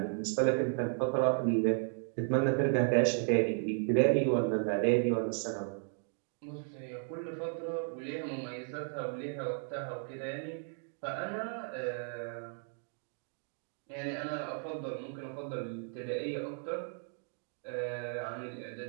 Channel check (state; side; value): silent; left; 55 dB below the other